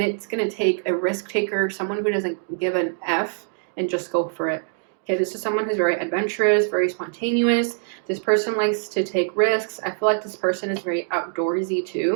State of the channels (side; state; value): left; silent; digital silence